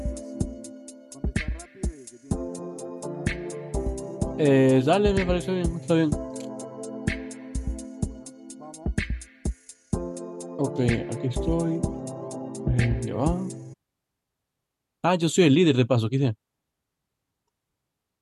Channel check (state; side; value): identical; both; correlation 1.00